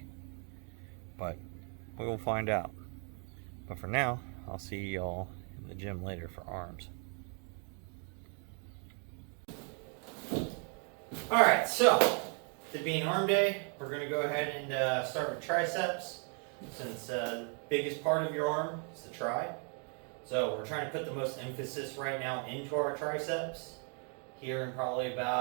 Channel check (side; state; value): left; quieter; 39.8 dB